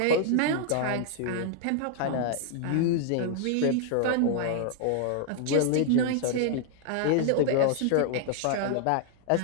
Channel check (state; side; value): different; both; correlation 0.00